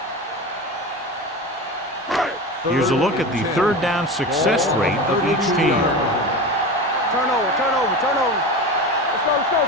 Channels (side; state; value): both; normal; correlation 0.27